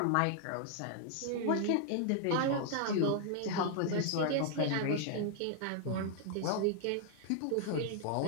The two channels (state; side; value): different; both; correlation 0.00